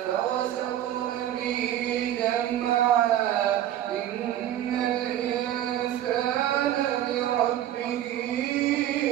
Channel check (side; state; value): left; quieter; 12.0 dB